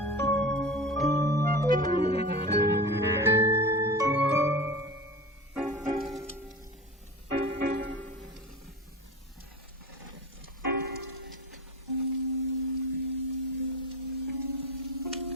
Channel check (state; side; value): normal; both; correlation 0.30